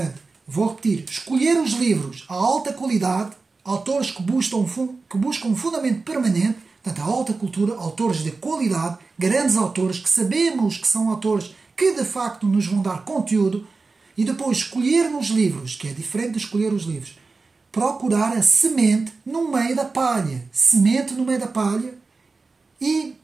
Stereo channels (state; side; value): quieter; left; 4.0 dB